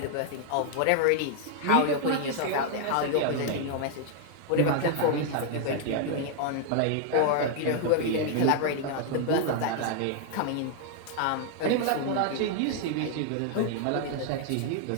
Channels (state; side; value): different; both; correlation 0.00